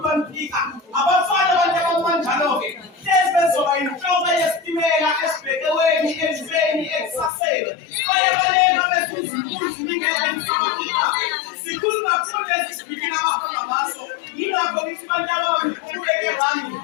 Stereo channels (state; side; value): drops out; right; at 7.3 s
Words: anifika. Abafana abantu abakanjalo-ke hlezi bezoba yinhloko yesitimela esibhekeweni, elizweni, ekusaseni. Baye balena bezuza impunzi ningeke nisabakilake. Sikhuluma kakhulu ezisibikini abahamba ngaso. Yingakho ngithi bantu ababekeke ngami